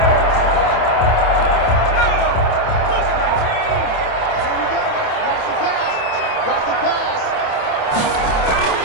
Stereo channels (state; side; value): late; right; 27 ms